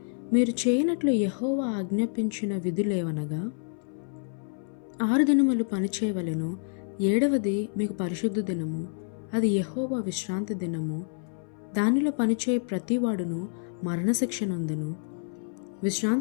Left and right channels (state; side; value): silent; right; 59 dB below the other